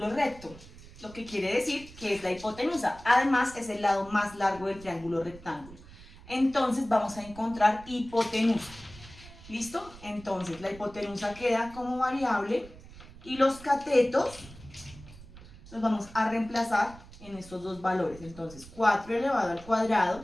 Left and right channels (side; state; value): right; noise; rumble, 19 dB below the sound